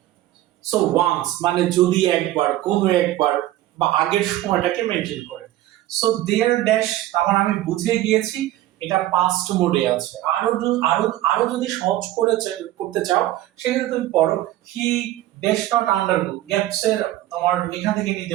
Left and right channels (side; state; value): left; quieter; 14.6 dB